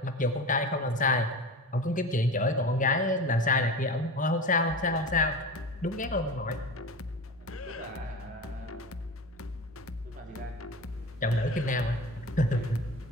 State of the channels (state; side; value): normal; both; correlation 0.30